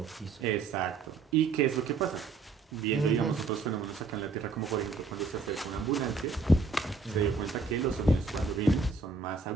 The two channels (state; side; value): quieter; left; 4.1 dB